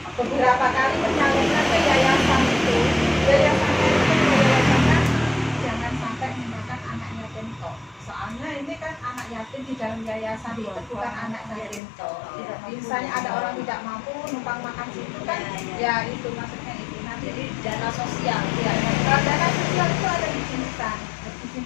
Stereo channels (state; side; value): drops out; right; at 11.8 s